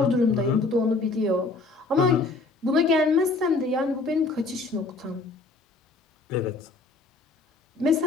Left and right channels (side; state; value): right; quieter; 3.6 dB